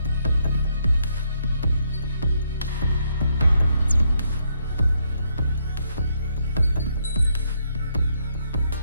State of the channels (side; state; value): both; inverted; correlation -0.74